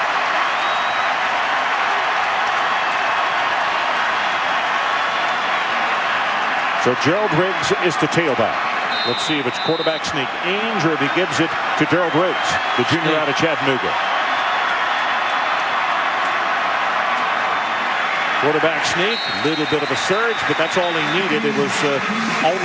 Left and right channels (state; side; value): identical; both; correlation 1.00